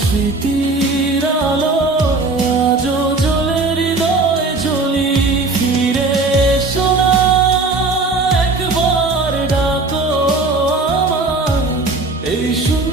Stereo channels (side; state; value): left; quieter; 3.5 dB